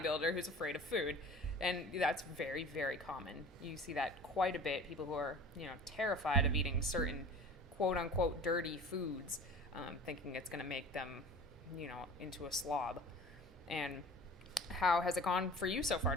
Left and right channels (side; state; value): both; normal; correlation 0.40